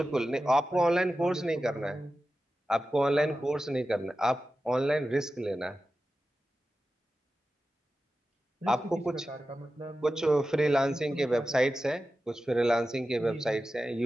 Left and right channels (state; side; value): normal; both; correlation 0.93